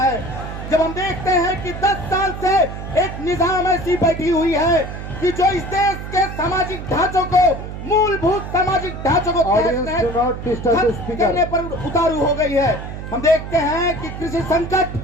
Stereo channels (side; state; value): right; noise; hum, 9 dB below the sound